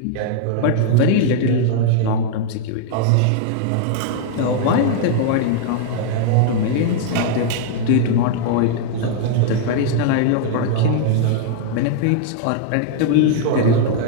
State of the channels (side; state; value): both; different; correlation 0.00